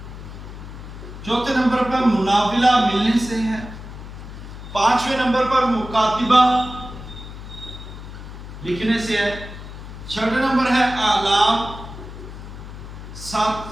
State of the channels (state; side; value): noise; left; hum, 12 dB below the sound